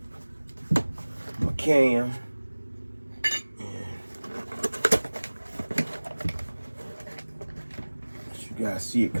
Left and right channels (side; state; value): both; inverted; correlation -1.00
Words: my cam. You guys see it